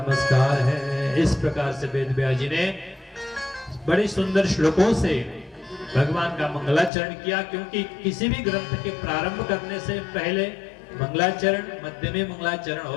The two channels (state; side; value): drops out; right; at 6.9 s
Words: है। इस प्रकार से वेद व्यास जी ने बड़े सुंदर श्लोकों से भगवान का मंगलाचरण किया, क्योंकि किसी भी ग्रंथ के प्रारंभ करने से पहले मंगलाचरण, मध्य में मंगलाचरण